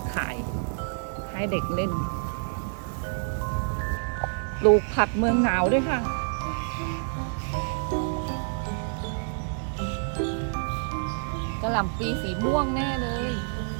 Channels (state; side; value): silent; left; digital silence